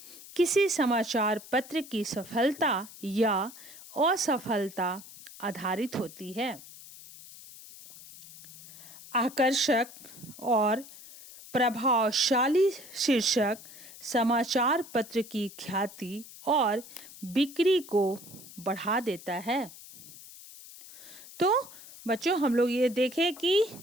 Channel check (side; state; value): left; noise; hiss, 17 dB below the sound